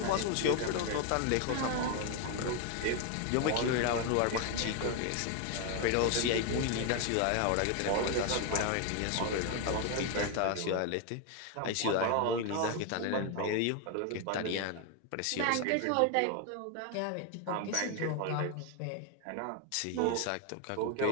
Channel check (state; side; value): different; both; correlation 0.01